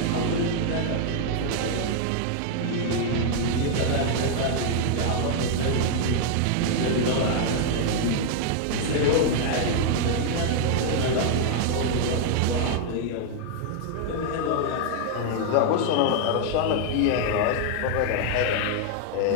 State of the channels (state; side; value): different; both; correlation 0.00